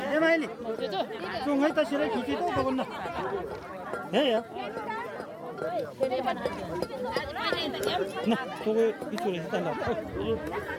ए माइली चुङै त सिरै खिची त बगन्न हे या न तोगे पिछुरे हिँड्दा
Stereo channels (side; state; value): both; identical; correlation 1.00